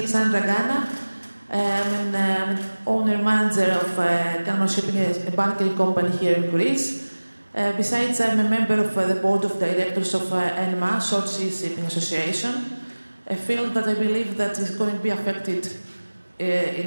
Gana. I'm an owner-manager of Kalmar Shipping, a bunkering company here in Greece. Besides, I'm a member of the board of directors of ENMA, Short Sea Shipping Association, a field that I believe that is going to be affected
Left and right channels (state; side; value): inverted; both; correlation -1.00